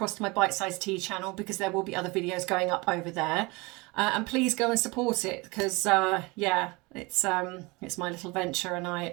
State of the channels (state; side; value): quieter; left; 25.4 dB